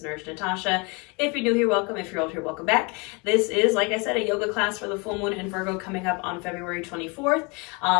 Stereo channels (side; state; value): right; quieter; 29.9 dB